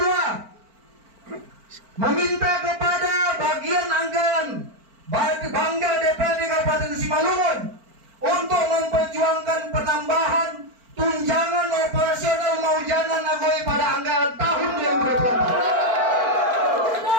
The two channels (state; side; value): late; left; 4.5 ms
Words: meminta kepada bagian anggaran Bangga DPRD Kabupaten Simalungun untuk memperjuangkan penambahan tunjangan operasional Maujana Nagori pada anggaran tahun